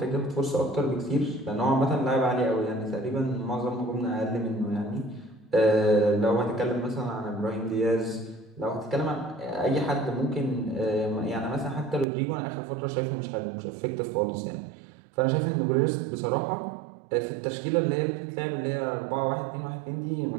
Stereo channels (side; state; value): left; drops out; at 12.1 s